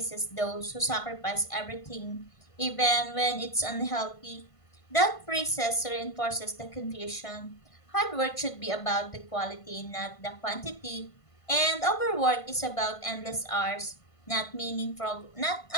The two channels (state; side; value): late; right; 1.5 ms